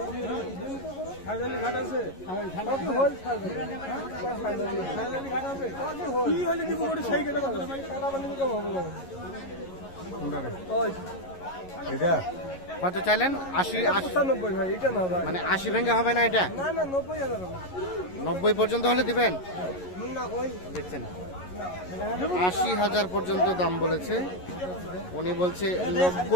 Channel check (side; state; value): right; late; 11 ms